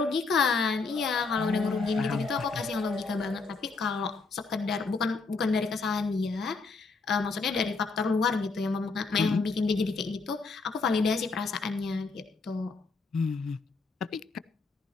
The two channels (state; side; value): quieter; right; 4.2 dB